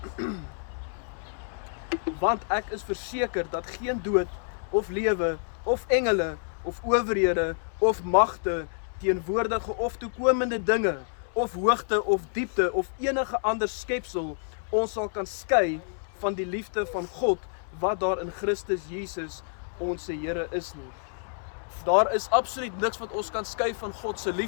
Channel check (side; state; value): right; silent; digital silence